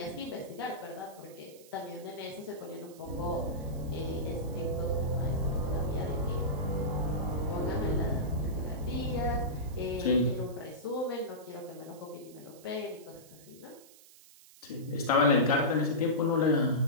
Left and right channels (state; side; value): noise; right; hiss, 22 dB below the sound